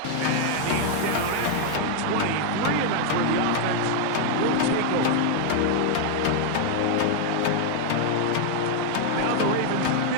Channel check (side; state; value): both; different; correlation 0.00